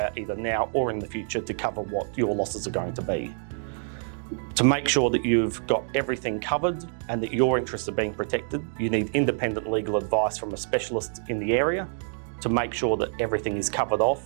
either now or in the future to cover what your losses are going to be. To make sure that you've got everything covered and that your interests are being protected, you need independent legal advice from a specialist in the area to make sure that everything is covered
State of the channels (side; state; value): left; silent; digital silence